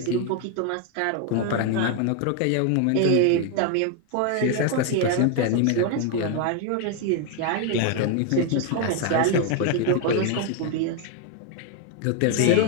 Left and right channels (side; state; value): both; different; correlation 0.01